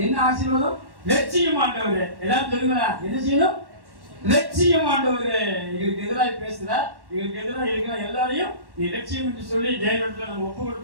என்ன ஆசீர்வாதம்? லட்சியம் ஆண்டவரே. எல்லாரும் சொல்லுங்களா, என்ன செய்யணும்? லட்சியம் ஆண்டவரே. எங்களுக்கு எதிராக பேசுற, எங்களுக்கு எதிராக இருக்கிற எல்லாரையும் நீ லட்சியம் என்று சொல்லி தேவனிடத்துல நம்ம ஒப்பு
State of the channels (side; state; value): left; late; 1.1 ms